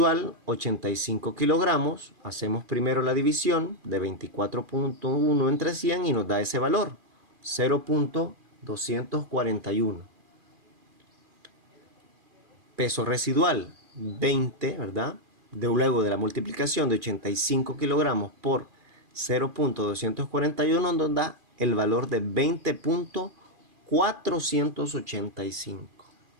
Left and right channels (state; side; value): late; left; 2.4 ms